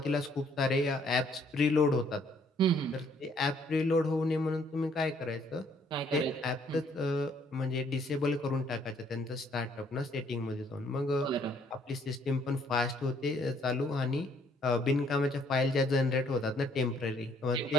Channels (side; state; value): both; normal; correlation 0.65